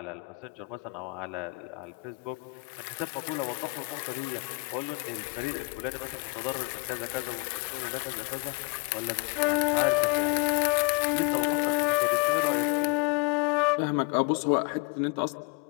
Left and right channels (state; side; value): quieter; right; 28.5 dB